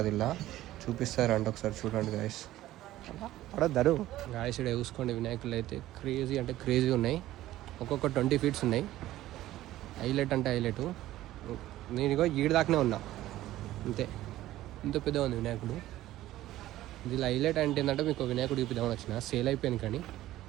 ఇలా చూపిస్తారంట. ఒకసారి చూడండి గైస్. పడద్దరు గాయస్, ఇక్కడ చూసుకోండి. వినాయకులు అయితే క్రేజీ అంటే క్రేజీ ఉన్నాయి. ఒక్కొక్క 20 feet ఉన్నాయి. హైలైట్ అంటే హైలైట్. నేను ఇగో ఈడు దాకానే ఉన్నా అంతే. ఇంత పెద్ద ఉంది వినాయకుడు. ఇది హైలైట్ అంటే ఏంటంటే మీకు వినాయకుడు చూపిద్దామని వచ్చిన. సేల్ అయిపోయింది కానీ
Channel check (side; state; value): left; quieter; 14.9 dB